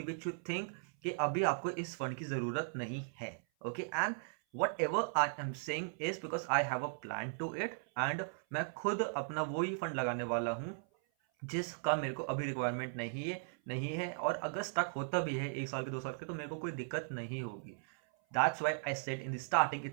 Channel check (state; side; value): silent; left; 53 dB below the other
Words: which you think कि अभी आपको इस फंड की ज़रूरत नहीं है। Okay, and whatever I am saying is because I have a plan to it, and मैं खुद अपना वो ही फंड लगाने वाला हूँ जिसका मेरे को अभी रिक्वायरमेंट नहीं है और अगर स्टक होता भी है 1 साल के 2 साल के तो मेरे को कोई दिक्कत नहीं होगी। That's why I said in the starting